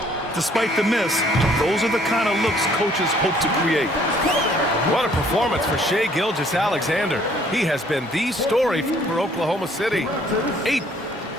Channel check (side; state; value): both; normal; correlation 0.61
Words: Despite the miss, those are the kind of looks coaches hope to create. What a performance for Shai Gilgeous-Alexander. He has been the story for Oklahoma City. 8.